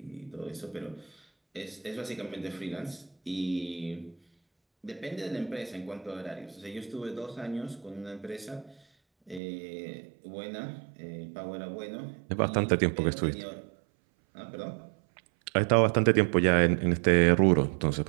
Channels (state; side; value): drops out; left; at 9.4 s